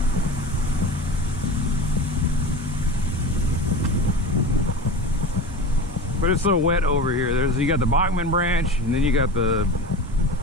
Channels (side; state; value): both; normal; correlation 0.29